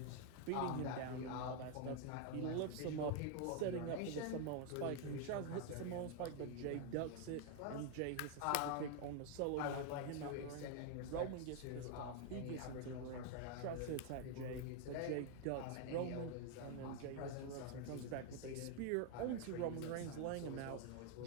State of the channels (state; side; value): different; both; correlation 0.00